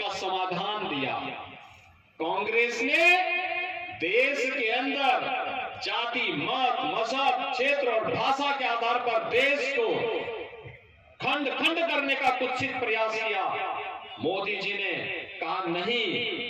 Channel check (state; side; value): identical; both; correlation 1.00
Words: समाधान दिया। कांग्रेस ने देश के अंदर जाति, मत, मजहब, क्षेत्र और भाषा के आधार पर देश को खंड खंड करने का कुत्सित प्रयास किया। मोदी जी ने कहा नहीं,